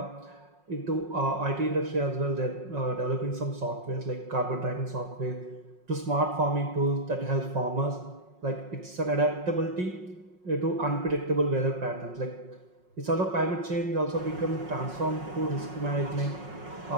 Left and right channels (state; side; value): late; left; 5.5 ms